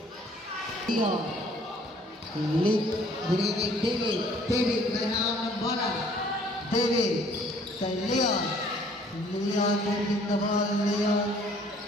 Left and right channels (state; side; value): normal; both; correlation 0.58